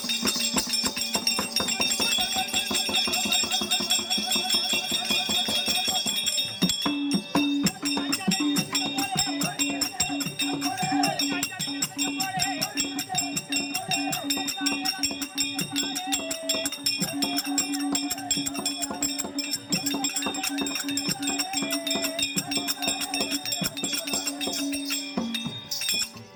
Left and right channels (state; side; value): identical; both; correlation 1.00